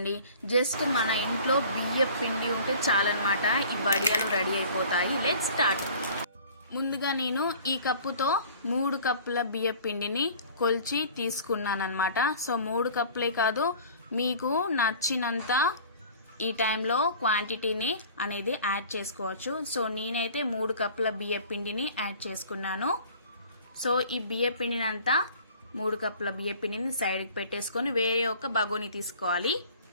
జస్ట్ మన ఇంట్లో బియ్య పిండి ఉంటే చాలన్నమాట. ఈ వడియాలు రెడీ అయిపోతాయి. Let's start. ముందుగా నేను ఈ కప్పుతో 3 కప్పుల బియ్య పిండిని కొలిచి తీసుకున్నానమాట. సో 3 కప్పులే కాదు, మీకు నచ్చినంత ఈ టైంలో క్వాంటిటీని అనేది యాడ్ చేసుకోవచ్చు. సో నేనైతే 3 కప్పుల బియ్య పిండిని యాడ్ చేసుకున్నాను. సో ఈ బియ్య పిండిని అంతా 3 కప్పుల బియ్య పిండిని సైడ్కి పెట్టేసుకొని వేరే ఒక బగోని తీసుకోవాలి.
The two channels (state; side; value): inverted; both; correlation -0.47